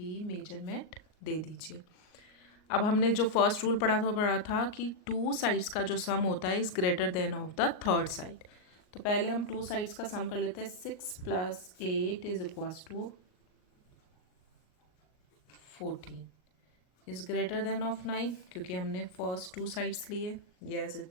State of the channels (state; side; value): late; right; 38 ms